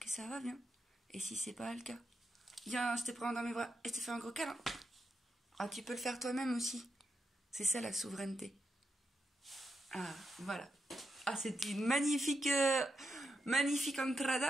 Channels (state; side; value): normal; both; correlation 0.85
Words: ça va bien. Et si c'est pas le cas, viens, je te prends dans mes bras et je te fais un gros câlin. Ah, tu peux le faire toi-même aussi. C'est ça la souveraineté. Ah, voilà. Ah, c'était une magnifique